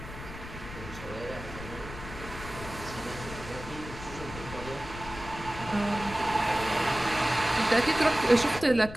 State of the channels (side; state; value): left; noise; rumble, 12 dB below the sound